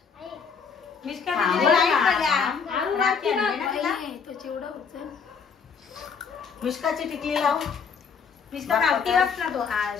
मिष्का हा, दीदीला हा, नाही हा. पडल्या. आरू राखी राखी आणली ना तिला? नाही, तो चिवडा होतं. मिष्काची टिकली लाव मिष्का गावठी बस ना तो. हा,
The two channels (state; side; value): quieter; right; 6.1 dB